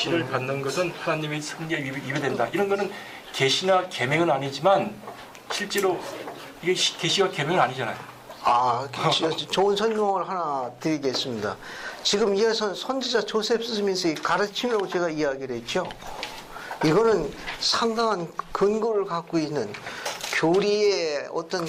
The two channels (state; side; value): identical; both; correlation 1.00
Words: 받는 것은 하나님의 성리에 위배된다. 이런 거는 계시나 계명은 아니지만 실제로 이게 계시와 계명은 아니잖아요. 좋은 설명을 하나 드리겠습니다. 지금 이어서 선지자 조셉 스미스의 가르침이라고 제가 이야기를 했죠. 이거는 상당한 근거를 갖고 있는 교리의 어떤